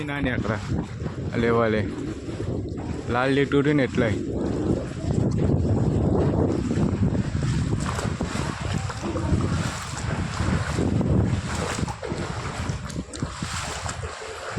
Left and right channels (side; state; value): both; identical; correlation 1.00